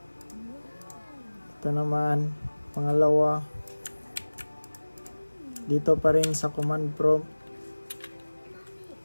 Ito naman pangalawa, dito pa rin sa command prompt,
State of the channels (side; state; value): both; inverted; correlation -1.00